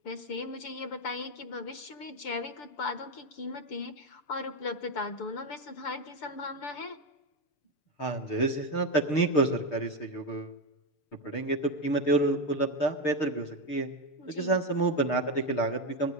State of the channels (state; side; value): late; right; 6.8 ms